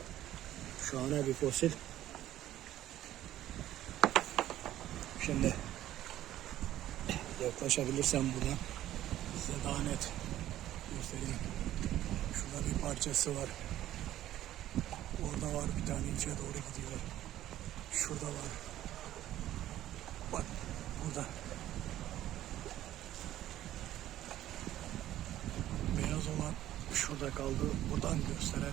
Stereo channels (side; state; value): left; quieter; 13.2 dB